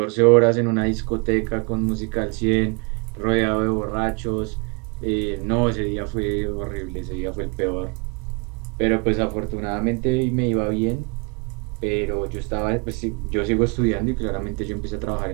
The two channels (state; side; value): quieter; left; 32.7 dB